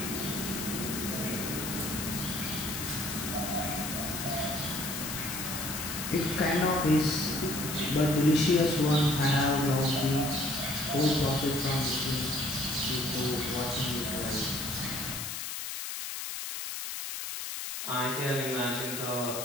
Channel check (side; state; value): left; noise; hiss, 5 dB below the sound